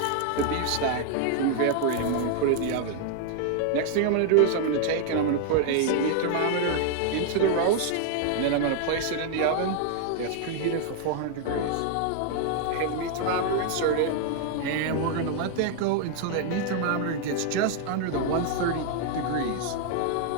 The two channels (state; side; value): different; both; correlation 0.00